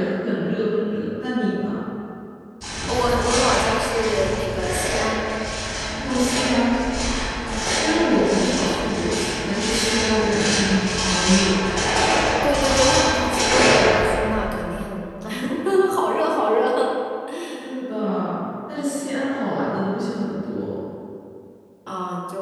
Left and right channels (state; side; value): identical; both; correlation 1.00